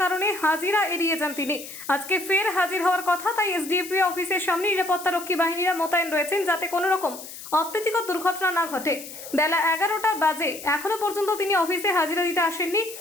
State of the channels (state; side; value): noise; left; hiss, 13 dB below the sound